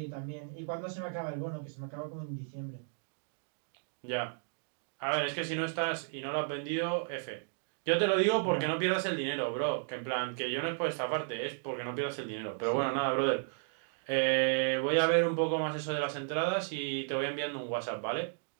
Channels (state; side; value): silent; left; digital silence